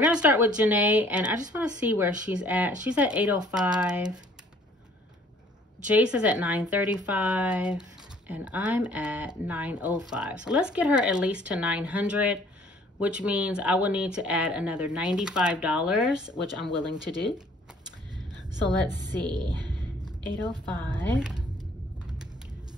going to start with Janae, and I just want to see where she's at. She's at 805. Jace is at 935, and I'm at 905. So let's get her at least to 900, which means I will need to add another $95, which I'm willing to do. So let's see, 805.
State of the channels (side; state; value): both; normal; correlation 0.57